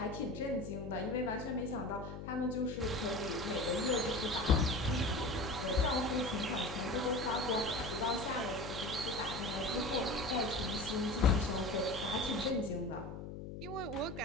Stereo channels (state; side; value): noise; left; hum, 9 dB below the sound